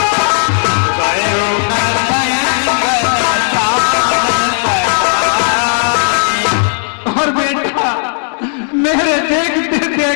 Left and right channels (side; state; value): right; silent; 64 dB below the other